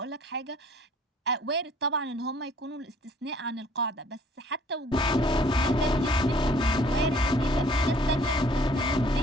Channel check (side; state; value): both; normal; correlation 0.56